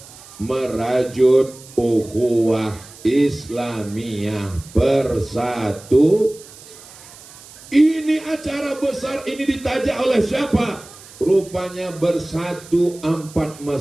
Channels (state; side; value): noise; right; hiss, 20 dB below the sound